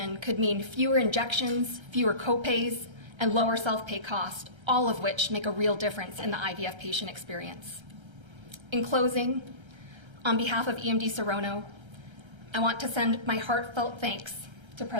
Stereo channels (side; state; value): left; late; 1.3 ms